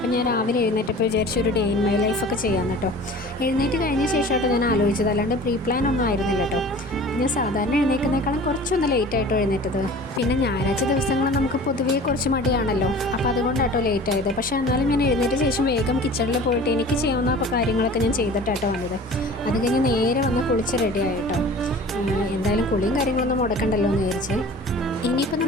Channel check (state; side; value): normal; both; correlation 0.43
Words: ഞാൻ രാവിലെ എഴുന്നേറ്റപ്പോൾ വിചാരിച്ചു ഒരു ഡേ ഇൻ മൈ ലൈഫൊക്കെ ചെയ്യാമെന്ന് കേട്ടോ. എഴുന്നേറ്റ് കഴിഞ്ഞ ശേഷമായിട്ട് ഞാൻ ആലോചിച്ചത്, അല്ലാണ്ട് പ്രീ പ്ലാൻ ഒന്നും ആയിരുന്നില്ല കേട്ടോ. ഞാൻ സാധാരണ എഴുന്നേൽക്കുന്നേക്കാളും കുറച്ചൊന്ന് ലേറ്റായിട്ടോ എഴുന്നേറ്റത്. പിന്നെ ഞായറാഴ്ച ദിവസങ്ങൾ നമുക്ക് പൊതുവേ കുറച്ച് മടിയാണല്ലോ, അപ്പോൾ അതുകൊണ്ടാട്ടോ ലേറ്റ് ആയത്. പക്ഷേ എന്നാലും ഞാൻ എഴുന്നേറ്റ ശേഷം വേഗം കിച്ചണിൽ പോയിട്ട് എനിക്ക് ചെയ്യാവുന്ന കാര്യങ്ങളൊക്കെ ഞാൻ ചെയ്തിട്ടാട്ടോ വന്നത്. അത് കഴിഞ്ഞ് നേരെ വന്ന് കുളിച്ച് റെഡി ആയിട്ടോ. എന്തായാലും കുളിയും കാര്യങ്ങളൊന്നും മുടക്കണ്ടല്ലോ എന്ന് വിചാരിച്ച്. ഇനിയിപ്പോൾ